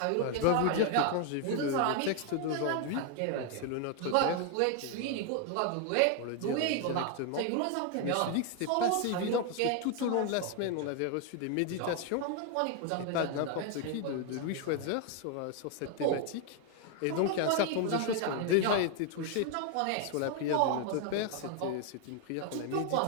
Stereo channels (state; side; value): different; both; correlation 0.01